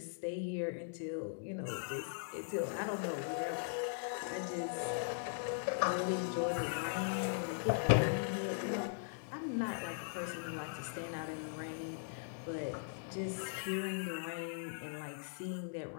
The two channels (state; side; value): silent; right; digital silence